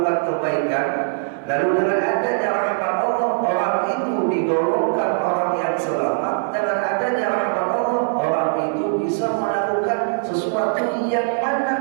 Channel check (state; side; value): silent; left; 65 dB below the other